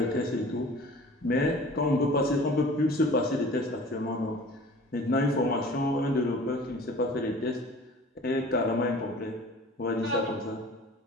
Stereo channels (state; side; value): normal; both; correlation 0.44